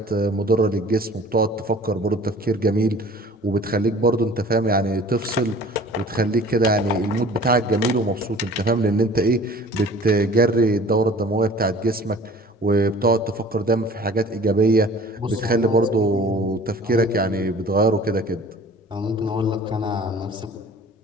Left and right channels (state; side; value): normal; both; correlation 0.47